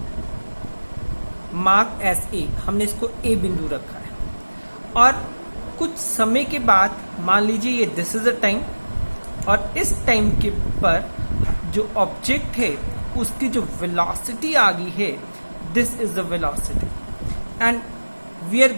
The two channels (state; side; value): inverted; both; correlation -1.00